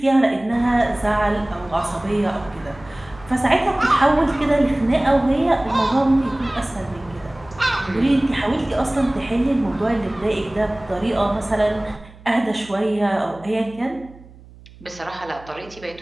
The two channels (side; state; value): right; noise; hum, 22 dB below the sound